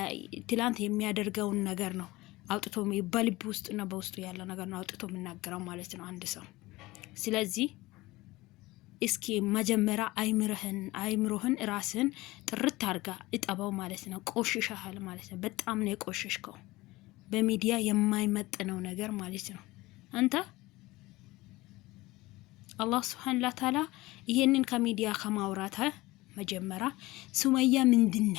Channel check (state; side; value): quieter; right; 19.9 dB